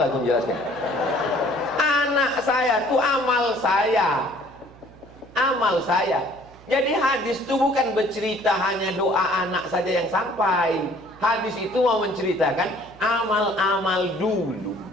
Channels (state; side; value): noise; right; hum, 23 dB below the sound